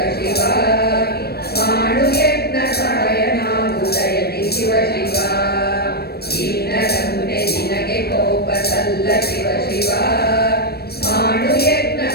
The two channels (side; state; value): right; late; 0.46 ms